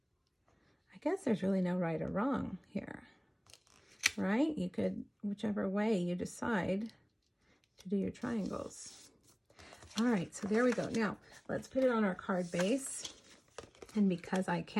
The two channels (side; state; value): both; identical; correlation 1.00